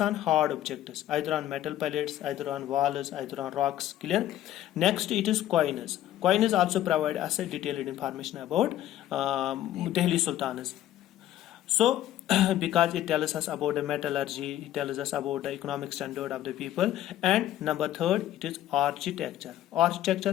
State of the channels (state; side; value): quieter; right; 13.0 dB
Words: on hard objects, either on metal pellets, either on walls, either on rocks. Clear? Next, it is coins. Coins also provide us a detailed information about Delhi Sultans. So because it tells us about the metallurgy, it tells us about the economic standard of the people. And number third, it is architecture.